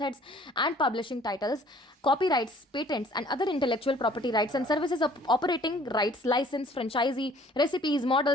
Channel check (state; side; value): normal; both; correlation 0.55